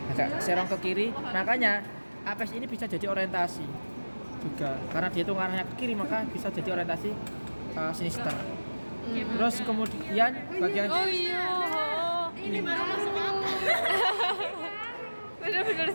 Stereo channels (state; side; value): inverted; both; correlation -1.00